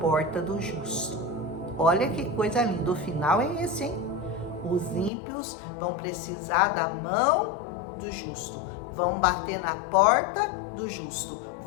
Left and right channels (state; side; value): drops out; right; at 5.1 s